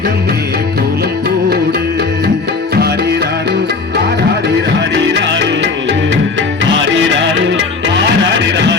கோலம் போடு. ஆரிராரு ஆராரிராரிராரு ஆரிராரு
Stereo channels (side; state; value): right; quieter; 4.2 dB